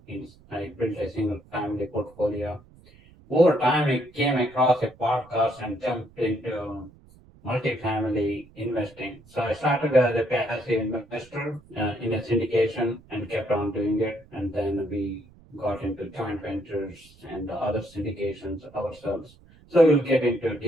I built a single family portfolio. Over time, I came across a podcast and jumped into multifamily investing. So I started as a passive investor in a syndication and kept on doing it. And then we got into joint ventures and other syndications ourselves. So we'll get into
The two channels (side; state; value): right; noise; rumble, 26 dB below the sound